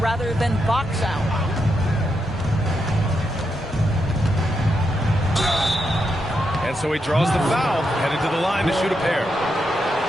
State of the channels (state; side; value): normal; both; correlation 0.83